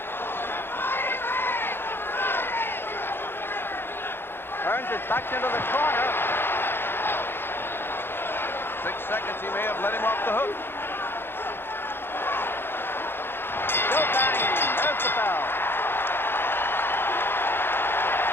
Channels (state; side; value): late; right; 0.11 ms